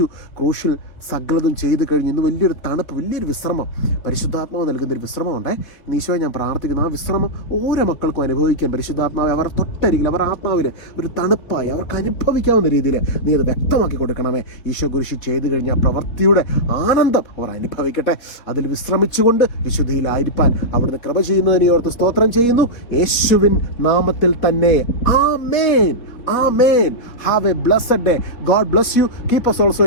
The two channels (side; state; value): right; late; 4.3 ms